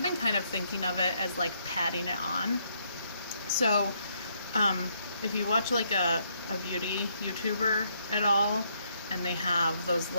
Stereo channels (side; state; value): both; inverted; correlation -0.73